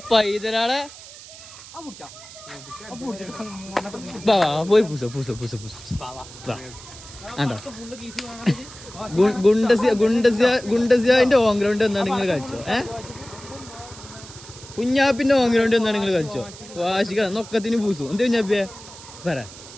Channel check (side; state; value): right; noise; hiss, 17 dB below the sound